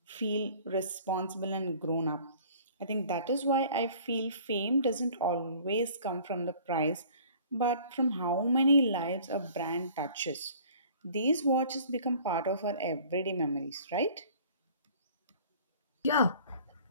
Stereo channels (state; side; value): inverted; both; correlation -0.50